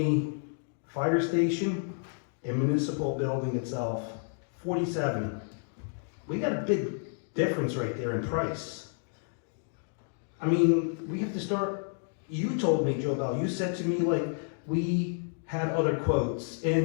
fire station and municipal building itself, 47. We got a big difference right there in price. I mean, we have to start, you told me, Joe Bell, you said to me like, we had other quotes,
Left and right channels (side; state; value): right; silent; 58 dB below the other